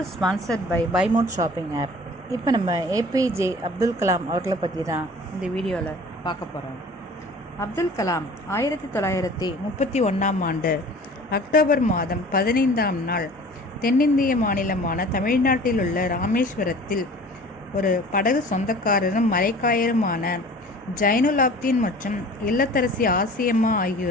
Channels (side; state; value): both; normal; correlation 0.45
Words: is sponsored by Buy Mode Shopping app. இப்போ நம்ம ஏபிஜே அப்துல் கலாம் அவர்களை பற்றி தான் இந்த வீடியோவில் பார்க்க போகிறோம். அப்துல் கலாம் 1931ஆம் ஆண்டு அக்டோபர் மாதம் 15ஆம் நாள் தென்னிந்திய மாநிலமான தமிழ்நாட்டில் உள்ள ராமேஸ்வரத்தில் ஒரு படகு சொந்தக்காரரும் மரைக்காயருமான ஜைனுலாப்தீன் மற்றும் இல்லத்தரசி ஆசியம்மா